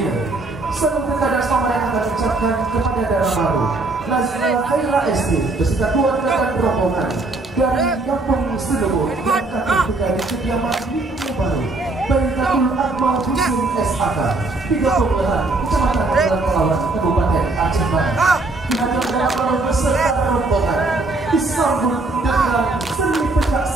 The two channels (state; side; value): quieter; left; 3.2 dB